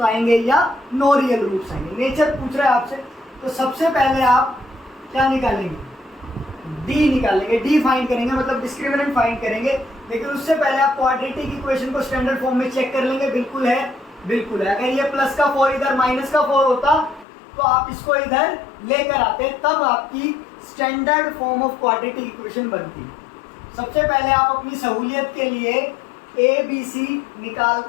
आएंगे या नो रियल रूट्स आएंगे। नेचर पूछ रहा है आपसे, तो सबसे पहले आप क्या निकालेंगे डी निकालेंगे, डी फाइंड करेंगे, मतलब डिस्क्रिमिनेंट फाइंड करेंगे। लेकिन उससे पहले आप क्वाड्रेटिक इक्वेशन को स्टैंडर्ड फॉर्म में चेक कर लेंगे, बिल्कुल है बिल्कुल है। अगर ये प्लस का 4 इधर माइनस का 4 होता तो आप इसको इधर लेकर आते, तब आपकी standard form of quadratic equation बनती। सबसे पहले आप अपनी सहूलियत के लिए ए बी सी निकाल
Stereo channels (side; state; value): right; drops out; at 17.2 s